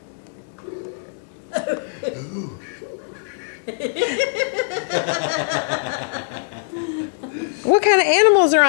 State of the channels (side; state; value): right; silent; digital silence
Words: Ooh. What kind of animals are